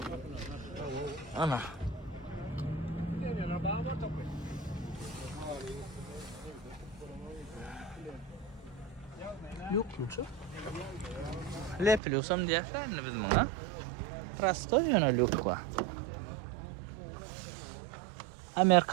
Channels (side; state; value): left; drops out; at 12.0 s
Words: Ana. Yok mu çok? Lepiliyorsam diýerler biz muňa. Prosto ýönelik ba.